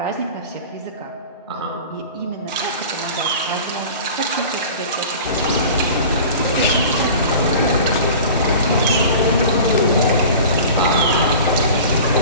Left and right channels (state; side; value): inverted; both; correlation -0.39